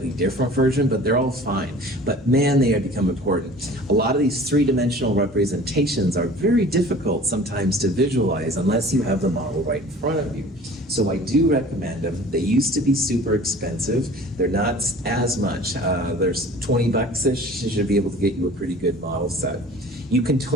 different version, but they're all fine. But man, they have become important. A lot of these three-dimensional representations are very difficult sometimes to visualize unless you have the model right in front of you. So I do recommend them. They used to be super expensive. They're not as much. There's 20 bucks-ish. You should be able to get you a pretty good model set. You can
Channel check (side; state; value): both; normal; correlation 0.45